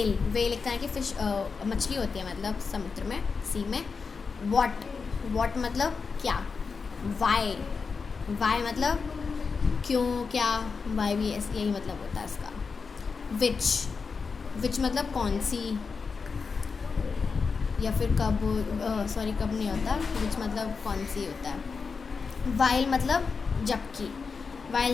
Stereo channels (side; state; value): right; quieter; 5.1 dB